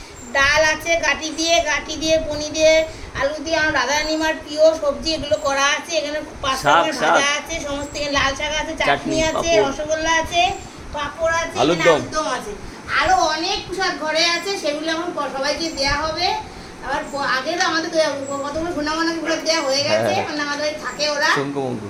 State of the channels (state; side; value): identical; both; correlation 1.00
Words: ডাল আছে, গাটি দিয়ে পনির দিয়ে, আলু দিয়ে, আমার রাধারানী মার প্রিয় সবজি এগুলো করা আছে। এখানে পাঁচ রকমের ভাজা আছে, সমস্ত এখানে লাল শাক আছে, চাটনি আছে, রসগোল্লা আছে, পাঁপড় আছে, আলুরদম আছে, আরো অনেক প্রসাদ ঘরে আছে। সেগুলো এখন সবাইকে দেওয়া হবে। আবার আগে তো আমাদের কতগুলো সোনামানাকে প্রসাদ দেওয়া হয়ে গেছে, মানে আমাদের থাকে ওরা